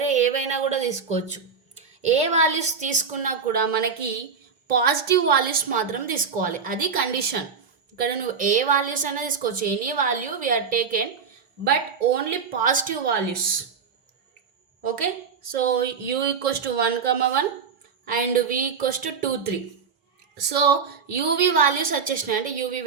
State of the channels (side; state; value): left; quieter; 5.9 dB